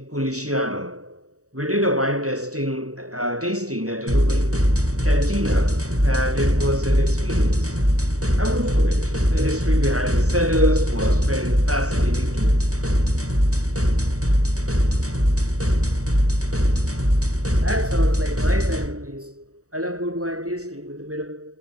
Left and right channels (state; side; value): late; left; 0.66 ms